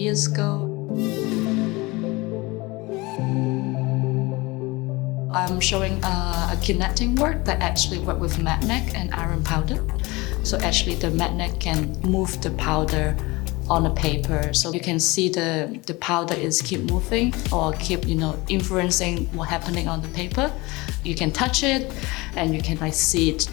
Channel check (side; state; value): right; quieter; 23.2 dB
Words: ago. I'm showing a kinetic work that actually work with magnet and iron powder. So actually the magnet can move the powder on a paper. So you can see the powder is keep moving or keep, influencing what's happening on the paper. You can touch it and you can see it,